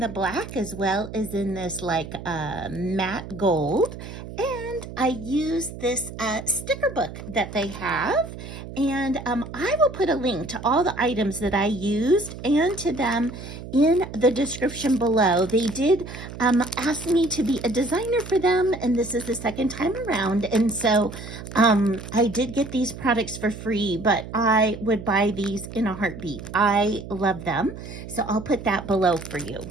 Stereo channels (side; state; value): right; noise; hum, 12 dB below the sound